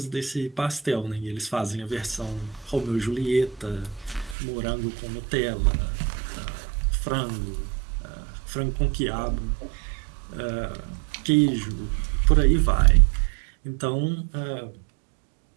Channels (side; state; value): left; drops out; at 4.4 s